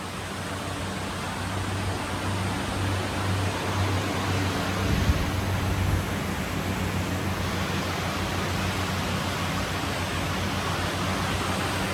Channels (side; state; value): both; identical; correlation 1.00